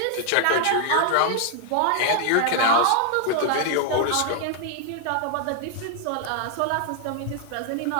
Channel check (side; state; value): both; different; correlation 0.00